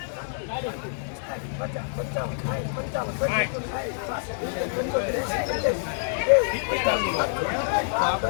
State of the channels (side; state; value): right; silent; digital silence